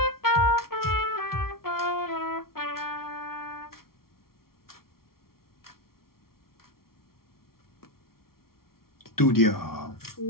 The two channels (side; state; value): right; late; 0.93 ms